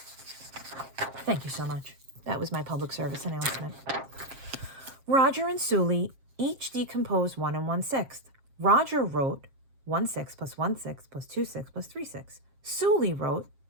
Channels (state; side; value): late; left; 7.4 ms